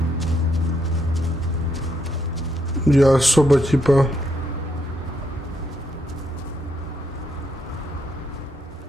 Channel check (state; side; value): normal; both; correlation 0.77